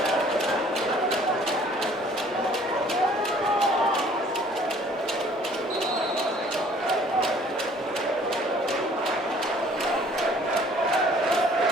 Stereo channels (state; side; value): normal; both; correlation 0.56